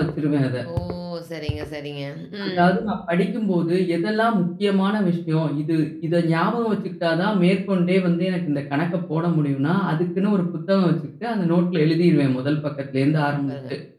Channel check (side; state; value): both; identical; correlation 1.00